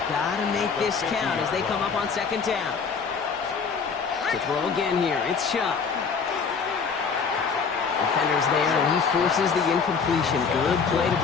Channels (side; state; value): right; quieter; 5.7 dB